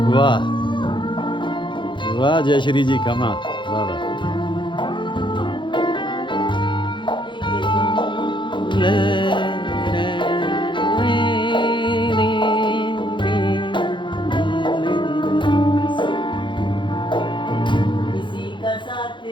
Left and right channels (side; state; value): right; late; 0.23 ms